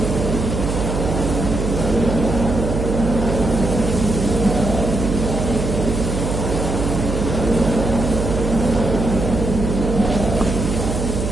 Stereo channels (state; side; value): noise; right; hum, 2 dB below the sound